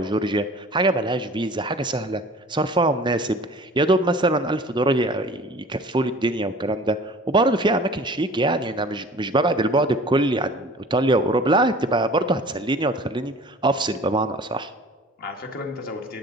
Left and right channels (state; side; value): normal; both; correlation 0.45